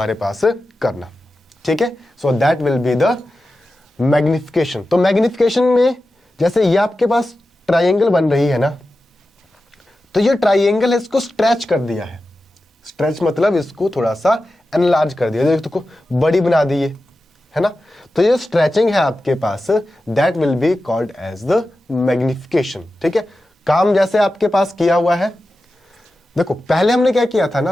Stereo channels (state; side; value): normal; both; correlation 0.93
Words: पास करना, ठीक है। सो that will be the magnification. तो मैग्निफिकेशन में जैसे ये आपके पास ट्राइंगल बन रही है ना, तो ये ट्राइंगल है, इसको स्ट्रेच कर दिया है। स्ट्रेच मतलब इसको थोड़ा सा एनलार्ज कर दिया, देखो बड़ी बना दी है ना। तो ये स्ट्रेचिंग है आपके पास, that will be called as the magnification, ठीक है। काम जैसे आपके पास किया हुआ है, देखो पहले हमने क्या किया था